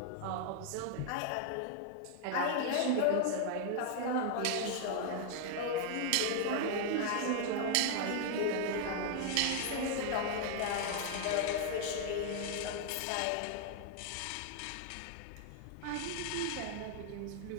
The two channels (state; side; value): different; both; correlation 0.00